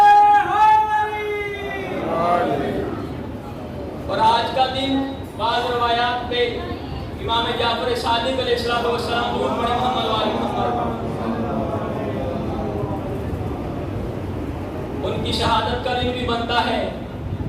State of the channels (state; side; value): identical; both; correlation 1.00